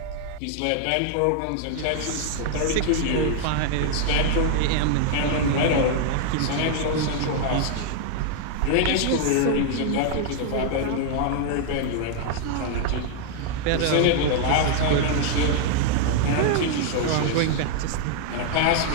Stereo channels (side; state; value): both; different; correlation 0.00